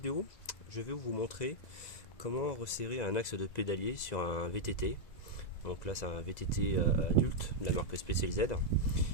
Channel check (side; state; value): right; late; 1.9 ms